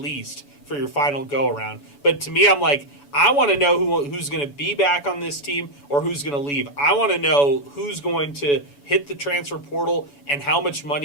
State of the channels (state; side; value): late; right; 7.0 ms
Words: for your final go-around. But to me, I'm like, I want to know who's going to be back on this team or who's going to leave. I want to know who's going to hit the transfer portal and how much